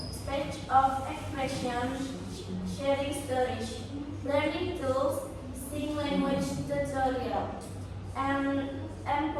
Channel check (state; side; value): identical; both; correlation 1.00